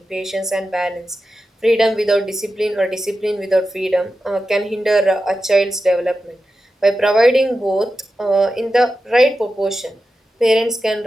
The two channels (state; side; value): normal; both; correlation 0.91